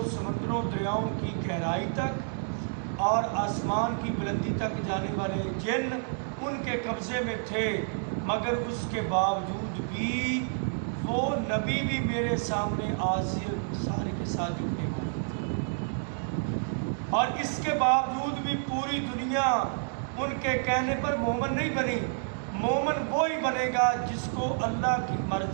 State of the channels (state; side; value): silent; left; digital silence